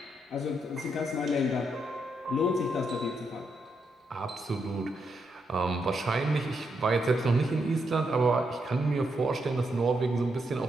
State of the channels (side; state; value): both; normal; correlation 0.80